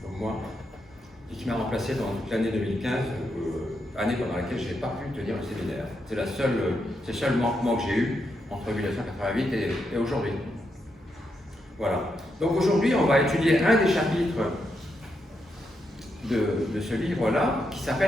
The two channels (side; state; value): both; normal; correlation 0.82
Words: comme moi, et qui m'a remplacé pendant toute l'année 2015, année pendant laquelle je n'ai pas pu tenir le séminaire. C'est le seul manquement que j'ai eu entre 1988 et aujourd'hui. Voilà. Donc aujourd'hui, on va étudier un des chapitres de ce livre-là, qui